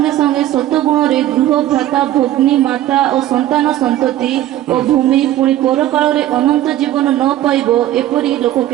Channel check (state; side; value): quieter; left; 13.6 dB